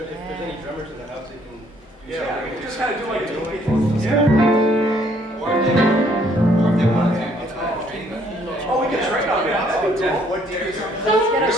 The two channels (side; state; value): both; normal; correlation 0.65